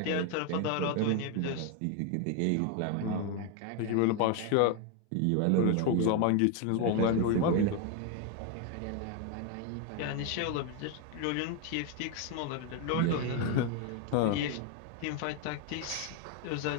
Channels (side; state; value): both; different; correlation 0.01